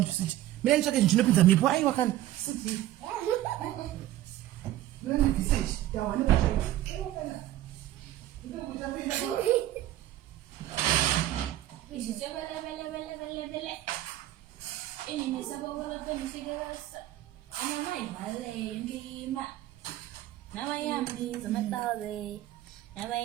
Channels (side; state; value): left; quieter; 14.2 dB